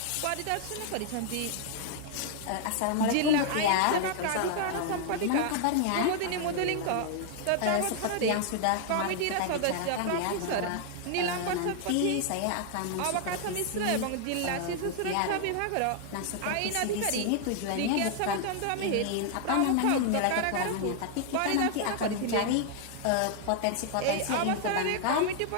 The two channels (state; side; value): different; both; correlation 0.00